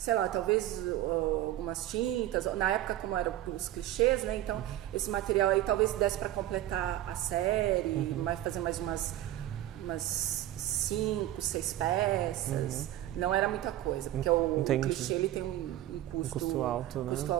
lá, talvez algumas tintas, na época como eram os clichês, né? Então esse material aí talvez desse para completar a série, fazer mais umas 5, 6 peças. Não era muita coisa, porque o clichê ele tem um custo alto, né? Custo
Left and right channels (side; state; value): left; quieter; 13.7 dB